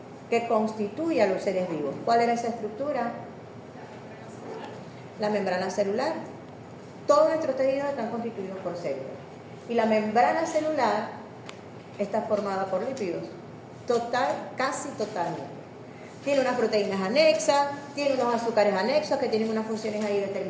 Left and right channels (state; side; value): identical; both; correlation 1.00